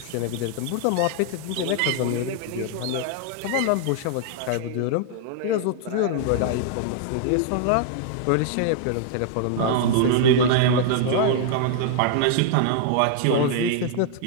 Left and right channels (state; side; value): different; both; correlation 0.00